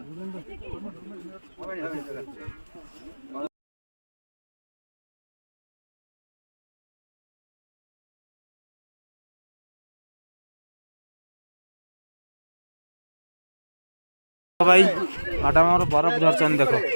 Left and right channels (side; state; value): both; inverted; correlation -1.00